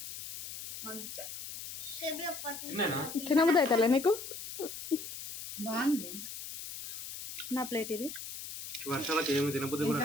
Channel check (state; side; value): noise; left; hiss, 9 dB below the sound